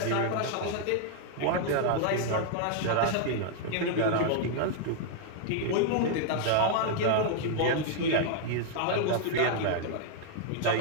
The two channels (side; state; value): both; different; correlation -0.01